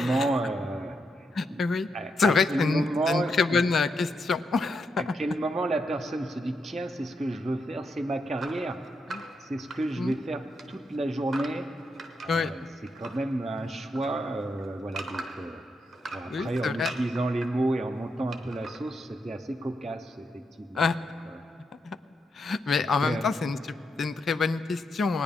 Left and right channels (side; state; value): both; normal; correlation 0.82